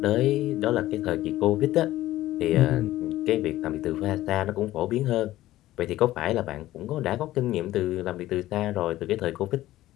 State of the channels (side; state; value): right; quieter; 15.3 dB